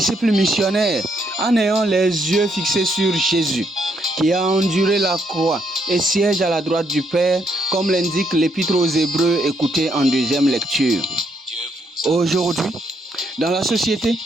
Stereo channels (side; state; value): both; normal; correlation 0.73